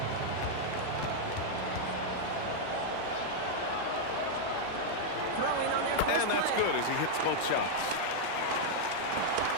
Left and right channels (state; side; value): different; both; correlation -0.01